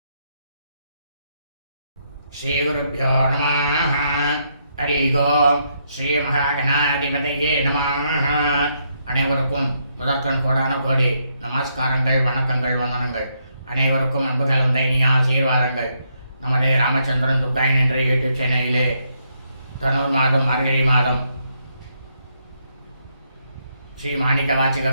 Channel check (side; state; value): both; inverted; correlation -0.76